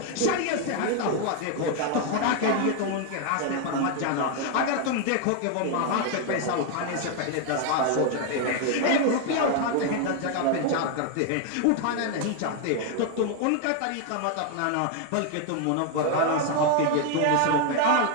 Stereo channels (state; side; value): different; both; correlation 0.01